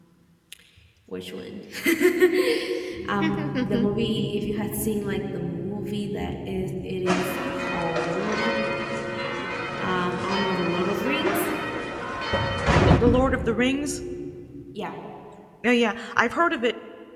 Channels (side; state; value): both; identical; correlation 1.00